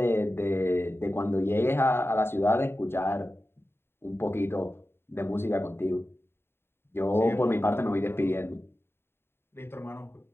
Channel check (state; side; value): late; right; 0.11 ms